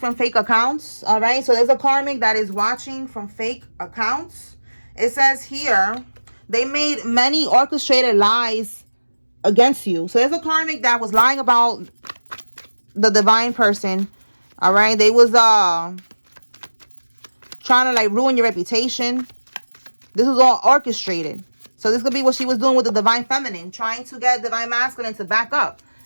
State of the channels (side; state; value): both; inverted; correlation -1.00